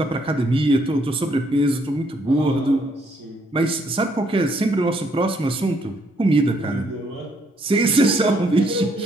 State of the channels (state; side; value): normal; both; correlation 0.70